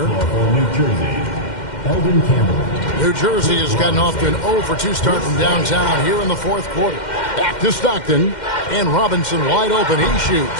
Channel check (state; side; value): late; right; 2.1 ms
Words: New Jersey, Eldon Campbell. New Jersey has gotten off to an 0 for 2 start from downtown here in the fourth quarter. Back to Stockton. And Robinson wide open. He